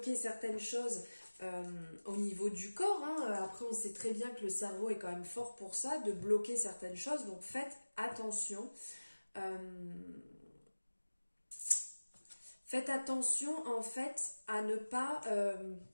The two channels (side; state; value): both; inverted; correlation -1.00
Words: certaines choses au niveau du corps. Hein. Après, on sait très bien que le cerveau est quand même fort pour ça, de bloquer certaines choses, donc faites attention. Faites attention, en fait, à ne pas